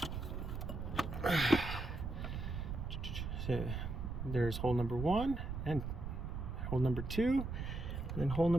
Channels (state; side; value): noise; right; rumble, 4 dB below the sound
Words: So there's hole number 1 and hole number 2, and then hole